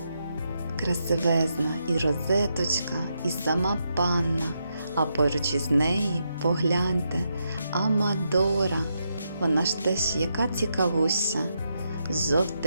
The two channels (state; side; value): inverted; both; correlation -0.82